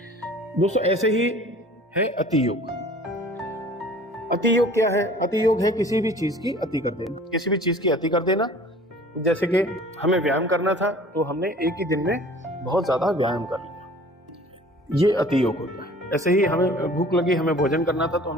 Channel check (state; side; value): normal; both; correlation 0.47